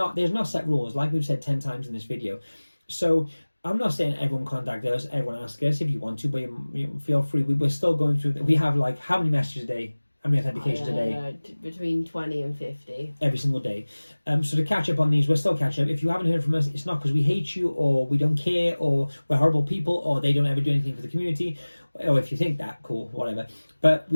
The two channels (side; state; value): both; inverted; correlation -1.00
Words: not set rules, like we've said 10 times in this video. So I'm not saying everyone contact us, everyone ask us if you want to, but you feel free. We're still going through. We have like how many messages a day? How many authentications a day? Between 20 and 50. Every single day. So to catch up on these, we're still catching up. If you haven't heard from us, it's not because we hate you, or we don't care, or we're horrible people, or they don't ever do anything for the community, or if you think that, cool, whatever. But